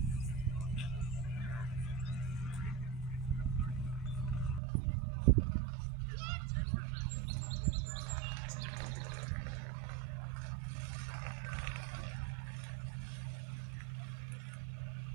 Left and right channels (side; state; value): left; drops out; at 4.6 s